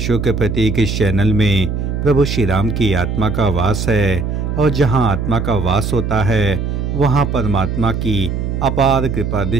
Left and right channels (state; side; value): noise; right; hum, 2 dB below the sound